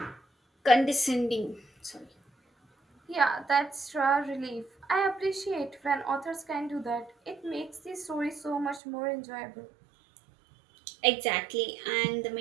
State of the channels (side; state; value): left; drops out; at 8.8 s